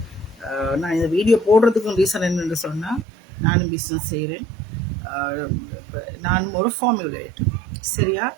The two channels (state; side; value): drops out; left; at 3.1 s